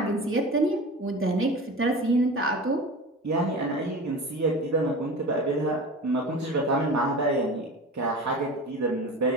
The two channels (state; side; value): normal; both; correlation 0.33